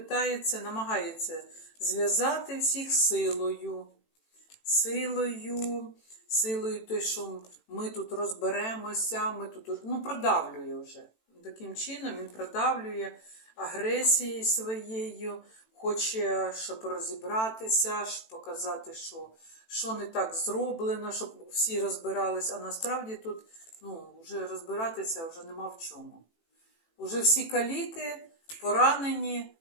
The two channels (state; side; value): late; right; 18 ms